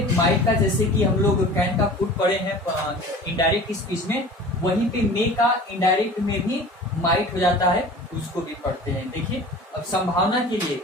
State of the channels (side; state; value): both; normal; correlation 0.40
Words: माइट का जैसे कि हम लोग कैन का फुट पढ़े हैं इनडायरेक्ट स्पीच में, वहीं पे मे का इनडायरेक्ट में भी माइट हो जाता है, उसको भी पढ़ते हैं। देखिए, अब संभावना के लिए